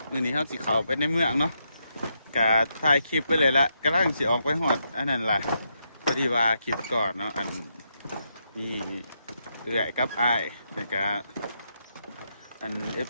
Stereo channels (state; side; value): inverted; both; correlation -0.81